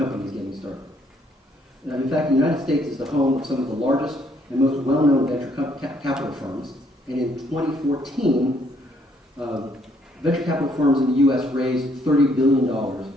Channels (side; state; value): both; normal; correlation 0.68